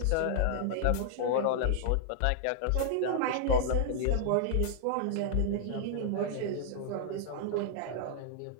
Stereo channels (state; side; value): different; both; correlation -0.01